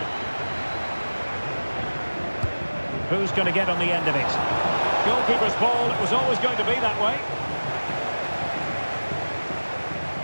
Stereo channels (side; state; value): both; inverted; correlation -1.00